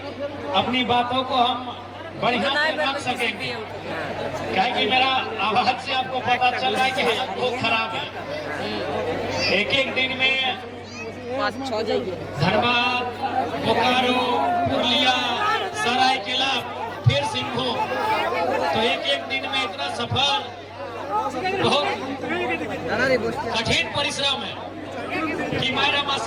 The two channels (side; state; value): both; identical; correlation 1.00